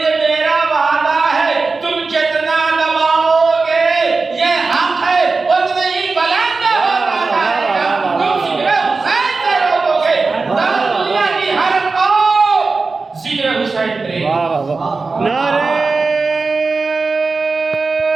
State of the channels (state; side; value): quieter; left; 4.1 dB